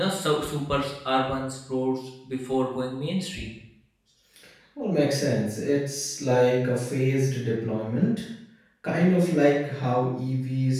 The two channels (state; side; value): identical; both; correlation 1.00